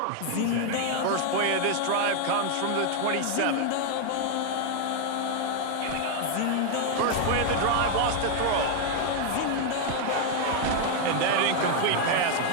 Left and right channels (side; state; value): both; different; correlation 0.00